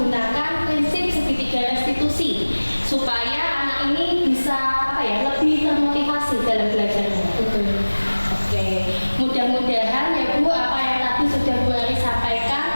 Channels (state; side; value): inverted; both; correlation -1.00